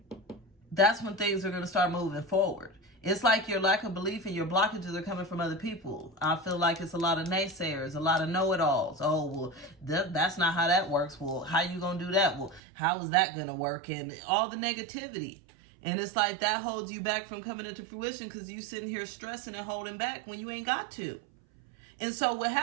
that's when things are going to start moving forward. It's like your lack of belief and your blockages are coming from other people. I feel like it's a lot of naysayers, a lot of know-it-alls. Oh, well, that's not how that works. Well, how you going to do that? Well, how is that going to work? And all the negativity. And it's like that holds you back from coming into fruition because you sitting here stressing and holding back when you ain't got to. And so what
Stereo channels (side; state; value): left; drops out; at 12.6 s